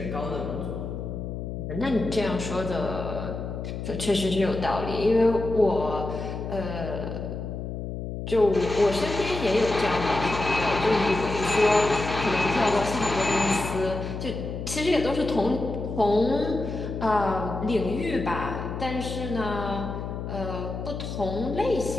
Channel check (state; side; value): noise; left; hum, 6 dB below the sound